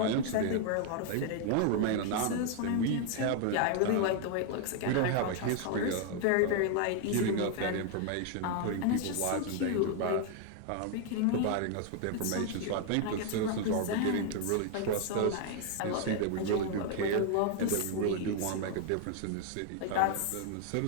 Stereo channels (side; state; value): both; different; correlation 0.00